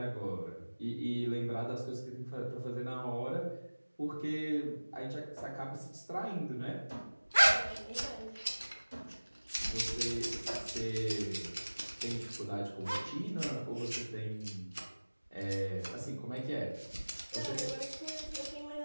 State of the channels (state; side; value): inverted; both; correlation -1.00